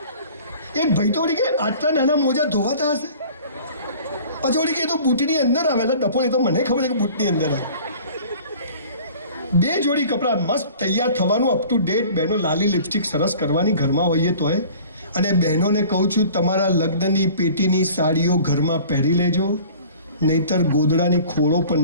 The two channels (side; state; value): both; inverted; correlation -0.46